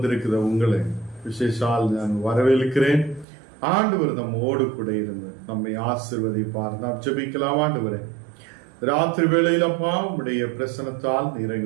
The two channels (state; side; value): drops out; left; at 3.2 s